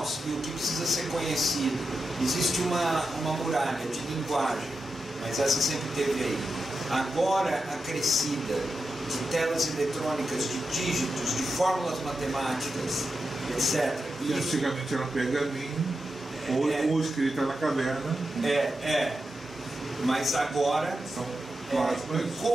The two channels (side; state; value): both; normal; correlation 0.89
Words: e o que precisa ser conhecido existe uma muralha de linguagem, mas essa sempre teve aí, agora acrescida de telas eletrônicas, de dígitos, de fórmulas matemáticas, etc. E antigamente era um pergaminho, ou escrita na caverna. Mas agora são o